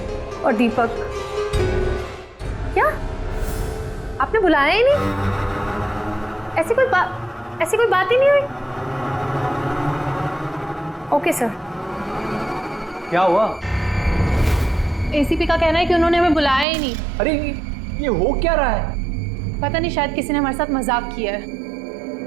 और दीपक। क्या आपने बुलाया ही नहीं? ऐसी कोई बात ही नहीं हुई? Okay sir. क्या हुआ? एसीपी का कहना है कि उन्होंने हमें बुलाया ही नहीं। अरे ये हो क्या रहा है? पता नहीं, शायद किसी ने हमारे साथ मजाक किया है।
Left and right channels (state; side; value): drops out; left; at 16.7 s